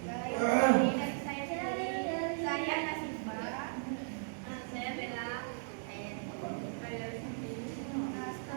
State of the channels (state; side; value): silent; left; digital silence